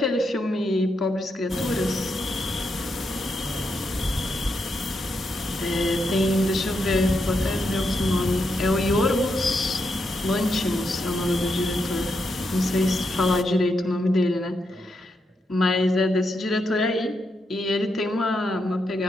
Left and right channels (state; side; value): normal; both; correlation 0.82